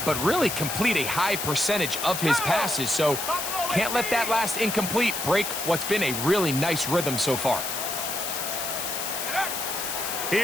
but really complete a high percentage of his passes. So can't let that last incomplete break what's been a really nice rhythm so far.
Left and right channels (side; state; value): left; noise; hiss, 4 dB below the sound